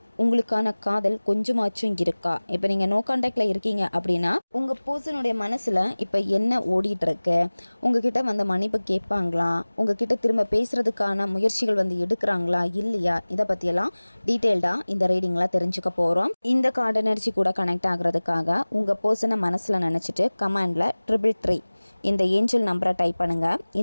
உங்களுக்கான காதல் கொஞ்சமாச்சும் இருக்கா? இப்போ நீங்கள் நோ கான்டாக்டில் இருக்கீங்க அப்படின்னா உங்கள் பர்சனுடைய மனசில் இப்போ என்ன ஓடிட்டுருக்கு, உங்ககிட்ட வந்து மன்னிப்பு கேட்பாங்களா, உங்ககிட்ட திரும்ப பேசுகிறதுக்கான முயற்சிகள் வந்து எடுக்கிறாங்களா இல்லையா, இதை பற்றியெல்லாம் டீட்டெயில்டாக இந்த ரீடிங்கில் தெரிஞ்சுக்க போகிறோம். இந்த கார்டு எனர்ஜி கூட கனெக்ட் ஆகிறதுக்காக உங்கள் பர்சனை மனசில் நினச்சிட்டு கமாண்டில் 333 இந்த ஏஞ்சல் நம்பரை டைப் பண்ணுங்கள்.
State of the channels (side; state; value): both; inverted; correlation -1.00